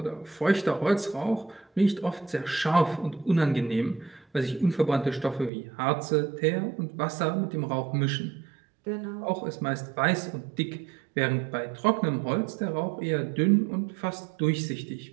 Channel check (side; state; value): left; drops out; at 5.5 s